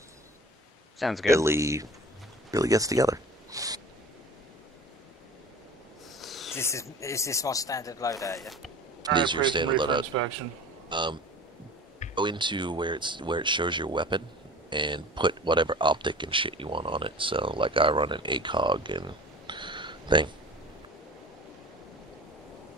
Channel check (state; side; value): normal; both; correlation 0.40